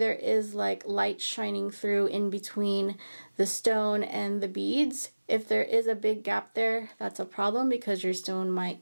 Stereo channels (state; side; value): inverted; both; correlation -1.00